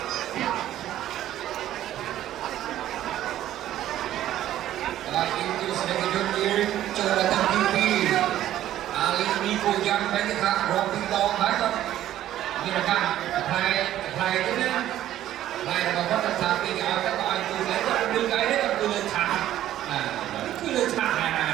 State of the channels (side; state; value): left; quieter; 12.7 dB